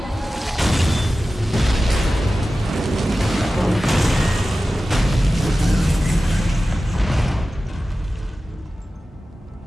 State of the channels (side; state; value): both; normal; correlation 0.95